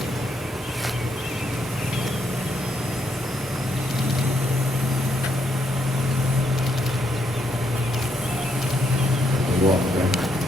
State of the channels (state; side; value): normal; both; correlation 0.77